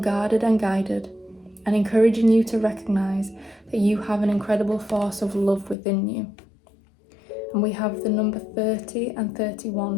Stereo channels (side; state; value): right; drops out; at 5.8 s